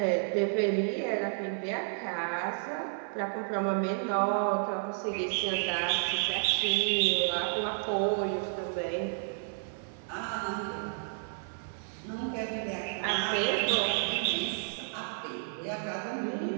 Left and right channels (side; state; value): left; silent; 57 dB below the other